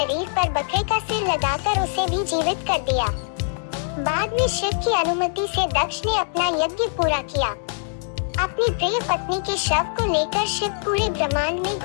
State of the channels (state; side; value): silent; right; 57 dB below the other